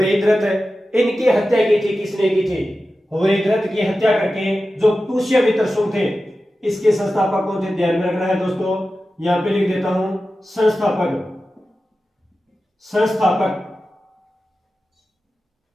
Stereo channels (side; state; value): both; normal; correlation 0.93